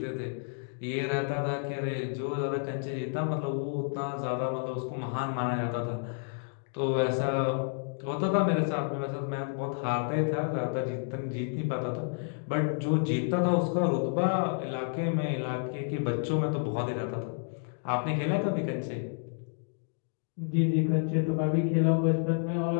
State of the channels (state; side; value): silent; right; 58 dB below the other